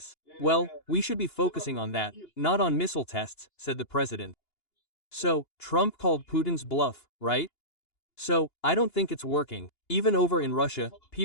Well, we should be focusing on that, not on missile tests, said the president. So, Trump called Putin's bluff, right? So, I don't think it's working. Even over in Russia,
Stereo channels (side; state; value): right; late; 2.8 ms